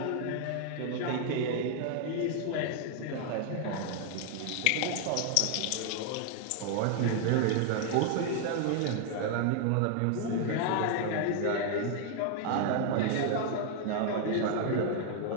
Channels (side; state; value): both; different; correlation 0.00